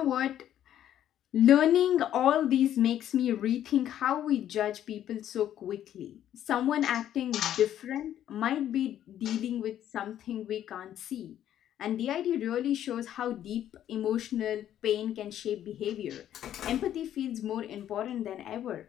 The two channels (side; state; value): right; quieter; 11.1 dB